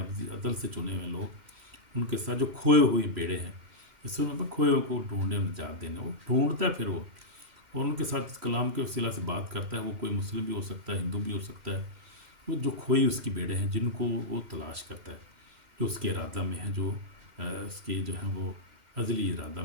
عدل سے چنے ہوئے لوگ، ان کے ساتھ جو کھوئے ہوئے بیڑے ہیں، اس میں کھوئے کو ڈھونڈنے اور نجات دینا، وہ ڈھونڈتا ہے پھر وہ، اور ان کے ساتھ اس کلام کے وسیلہ سے بات کرتا ہے۔ وہ کوئی مسلم بھی ہو سکتا ہے، ہندو بھی ہو سکتا ہے، وہ جو کھوئی اس کی بیڑے ہیں جن کو وہ تلاش کرتا ہے، جو اس کے ارادہ میں ہیں، جو اس کے جو ہیں وہ ازلی ارادہ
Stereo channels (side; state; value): left; late; 2.1 ms